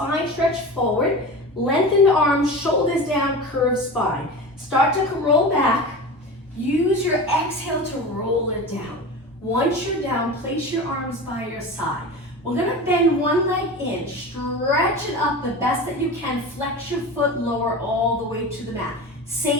stretch forward. Lengthen the arms, shoulders down, curved spine. Start to roll back. Use your exhale to roll it down. Once you're down, place your arms by your side. We're gonna bend one leg in, stretch it up the best that you can. Flex your foot, lower all the way to the mat.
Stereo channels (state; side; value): normal; both; correlation 0.30